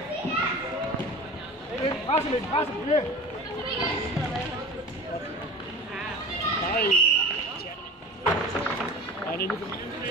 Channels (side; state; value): both; normal; correlation 0.35